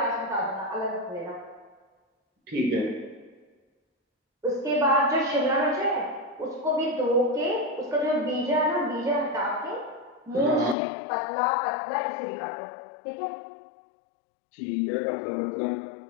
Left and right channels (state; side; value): drops out; right; at 10.8 s